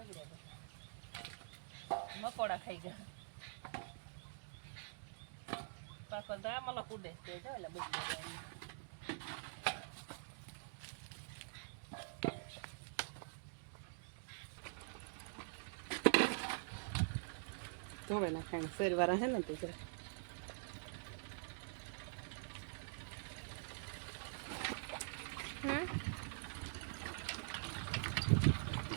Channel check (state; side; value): silent; left; digital silence